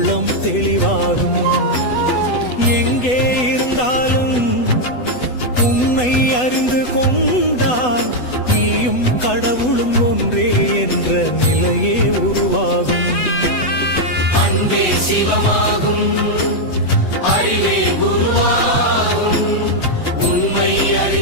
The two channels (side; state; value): right; late; 8.1 ms